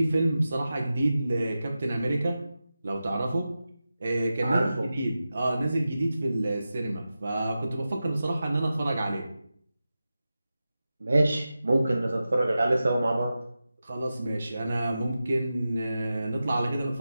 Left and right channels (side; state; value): both; inverted; correlation -0.93